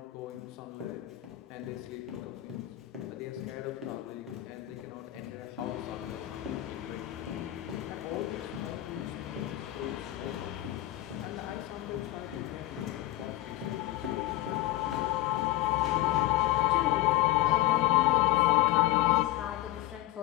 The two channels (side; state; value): right; quieter; 16.0 dB